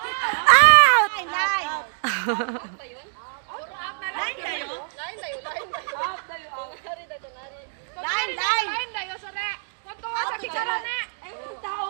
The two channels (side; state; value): left; silent; digital silence